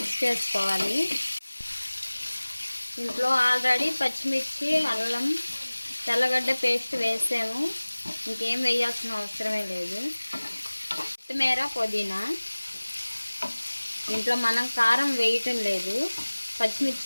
చేసుకోవాలి. ఇంట్లో ఆల్రెడీ పచ్చిమిర్చి, అల్లం, తెల్లగడ్డ పేస్ట్ వేసాము. ఇంకేం వేయాల్సిన అవసరమే లేదు. కొత్తిమీర, పుదీనా. ఇంట్లో మనం కారం వేయటం లేదు,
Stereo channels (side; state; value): both; inverted; correlation -1.00